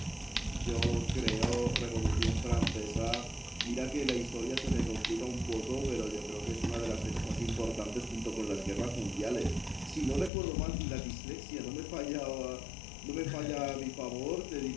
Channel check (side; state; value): right; drops out; at 10.3 s